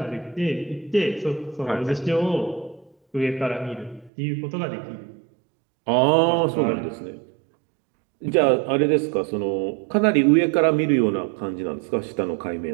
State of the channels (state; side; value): drops out; left; at 4.1 s